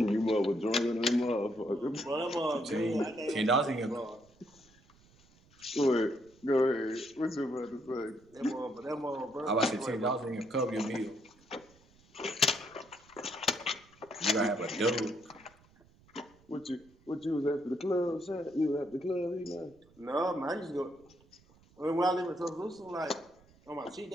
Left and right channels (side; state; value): right; noise; rumble, 29 dB below the sound